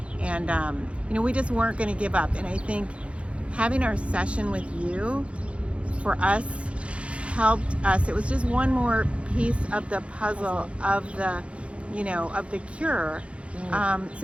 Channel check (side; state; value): left; late; 0.061 ms